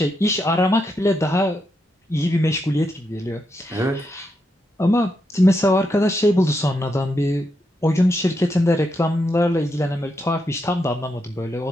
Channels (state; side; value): normal; both; correlation 0.82